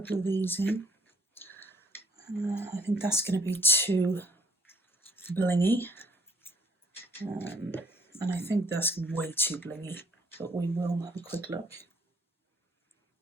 of these in. I think that's going to be too blingy. And I think that's way too blingy, but we will have a quick look.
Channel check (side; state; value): both; normal; correlation 0.62